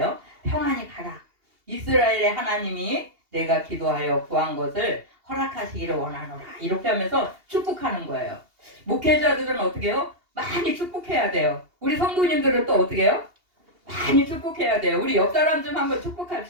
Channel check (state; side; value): late; left; 2.8 ms